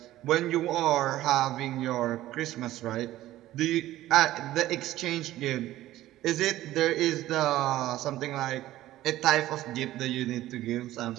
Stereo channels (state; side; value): quieter; left; 14.9 dB